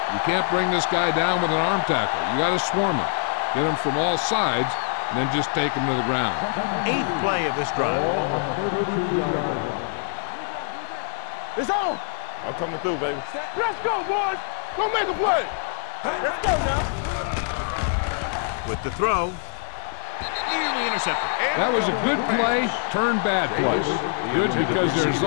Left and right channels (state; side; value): silent; right; 62 dB below the other